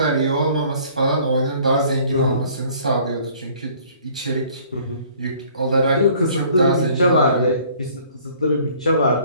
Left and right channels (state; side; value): inverted; both; correlation -0.56